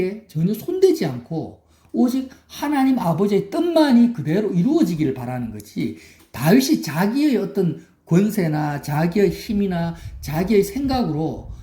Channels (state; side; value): identical; both; correlation 1.00